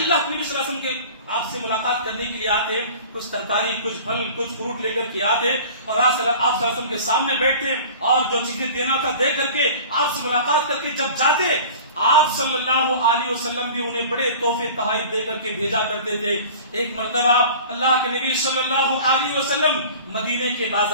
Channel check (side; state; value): both; inverted; correlation -0.41